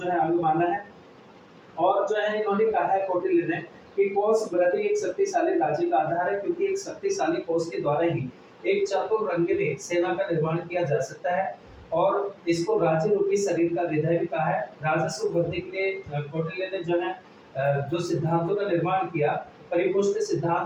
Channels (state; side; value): identical; both; correlation 1.00